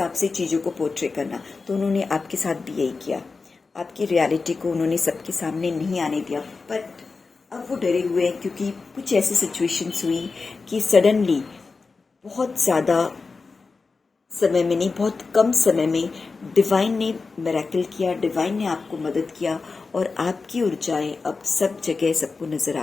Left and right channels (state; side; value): quieter; right; 4.3 dB